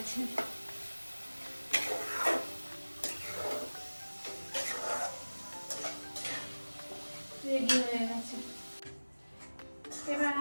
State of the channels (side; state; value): both; inverted; correlation -1.00